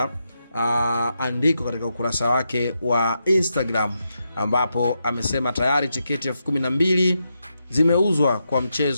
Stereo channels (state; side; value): inverted; both; correlation -0.84